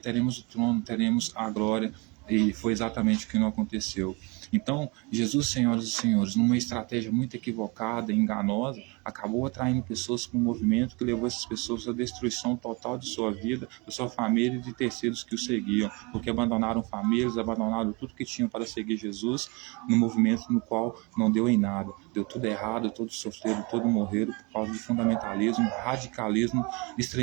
o trono, teremos a glória, E foi exatamente o que não aconteceu. Então, Jesus, senhoras e senhores, numa estratégia muito equivocada e enganosa, acabou atraindo pessoas para um movimento que levou essas pessoas à destruição total de sua vida, da sua família e de terceiros que o seguiam, porque abandonaram famílias, abandonaram tudo que tinham para seguir Jesus, no movimento no qual não deu em nada. Deu tudo errado, todos sofreram, todos morreram por causa de fundamentalismo, radicalismo,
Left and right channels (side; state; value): left; quieter; 28.6 dB